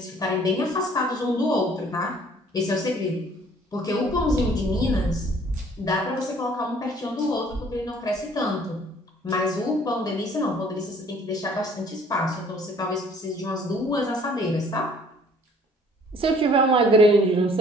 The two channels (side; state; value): both; normal; correlation 0.56